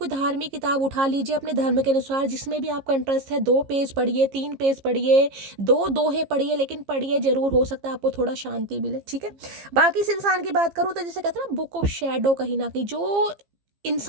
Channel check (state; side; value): late; left; 15 ms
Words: धार्मिक किताब उठा लीजिए अपने धर्म के अनुसार, जिसमें भी आपका इंटरेस्ट है, 2 पेज पढ़िए, 3 पेज पढ़िए, 2 दोहे पढ़िए, लेकिन पढ़िए जरूर, हो सकता है आपको थोड़ा शांति मिले, ठीक है। बाकी इस इंसान की बात करूँ तो जैसे कहते हैं ना बुक ऑफ शैडो, कहीं ना कहीं जो